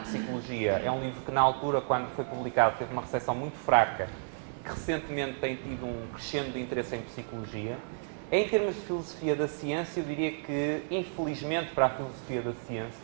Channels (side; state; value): left; silent; digital silence